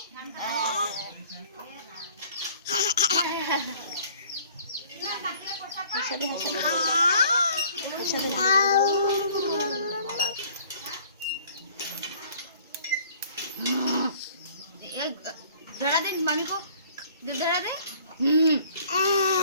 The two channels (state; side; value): inverted; both; correlation -0.54